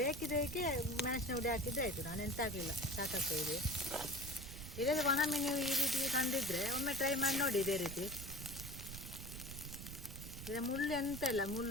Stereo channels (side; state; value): right; noise; rumble, 10 dB below the sound